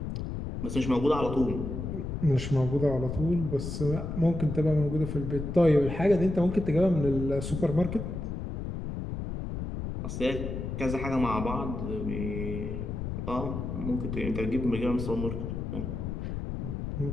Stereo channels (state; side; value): noise; left; rumble, 5 dB below the sound